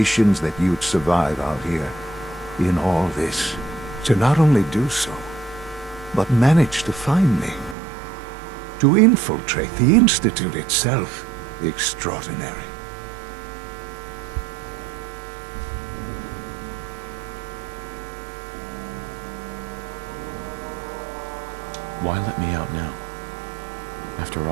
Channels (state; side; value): drops out; left; at 7.8 s